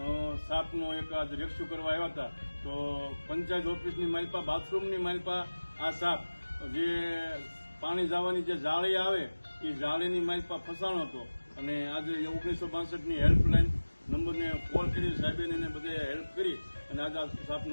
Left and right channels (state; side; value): inverted; both; correlation -1.00